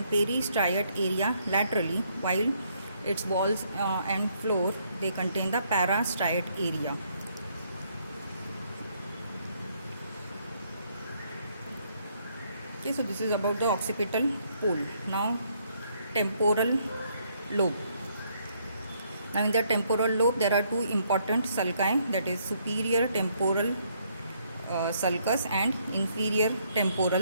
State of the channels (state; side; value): inverted; both; correlation -0.70